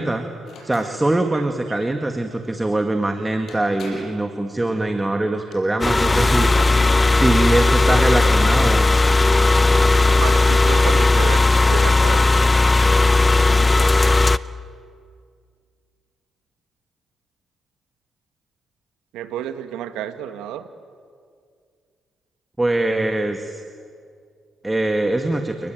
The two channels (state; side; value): normal; both; correlation 0.96